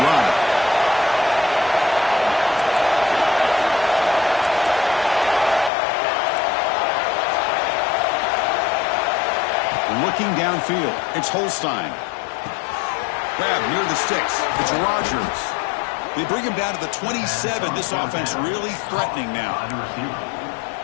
drive. Looking downfield, it's Holstein. Grab near the sticks, it's Rodgers. They bring him down to the 27. This offense really threatening now.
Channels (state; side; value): drops out; right; at 5.7 s